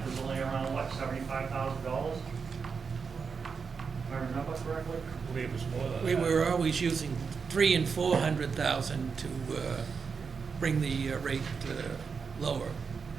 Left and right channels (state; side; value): quieter; left; 5.6 dB